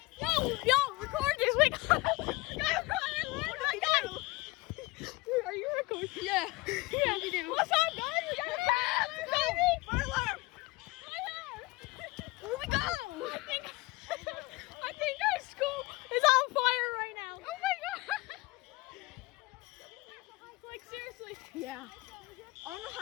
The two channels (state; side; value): quieter; right; 22.5 dB